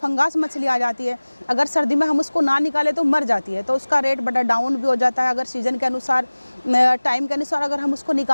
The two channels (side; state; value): both; inverted; correlation -1.00